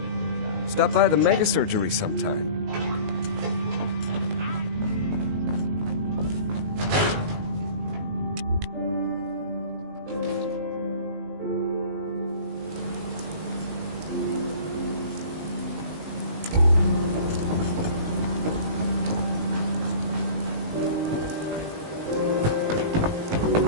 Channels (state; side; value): late; left; 19 ms